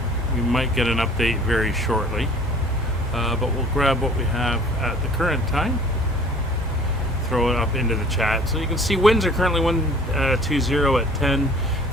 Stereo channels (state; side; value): normal; both; correlation 0.50